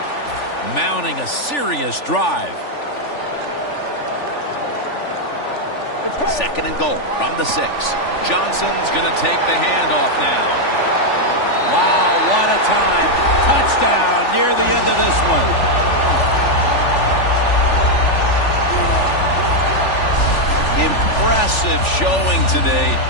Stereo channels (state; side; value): late; right; 3.4 ms